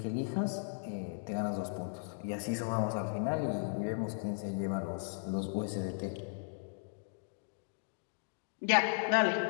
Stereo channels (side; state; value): right; silent; digital silence